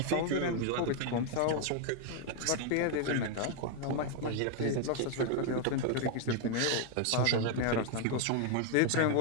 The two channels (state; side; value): different; both; correlation 0.00